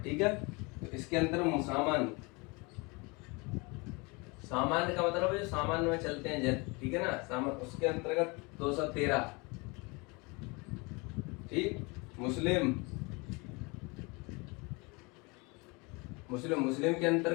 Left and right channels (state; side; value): quieter; right; 27.8 dB